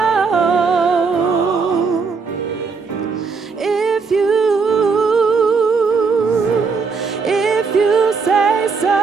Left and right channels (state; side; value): quieter; left; 4.9 dB